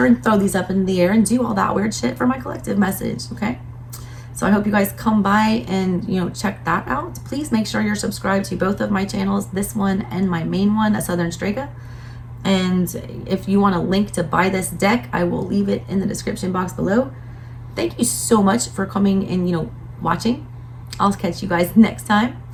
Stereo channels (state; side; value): identical; both; correlation 1.00